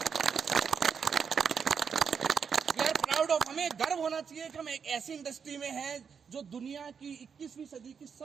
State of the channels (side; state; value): left; quieter; 6.6 dB